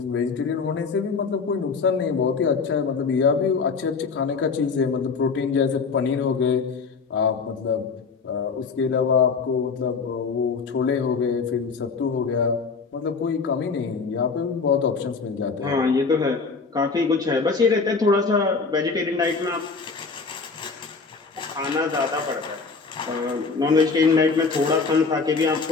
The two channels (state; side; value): quieter; right; 4.8 dB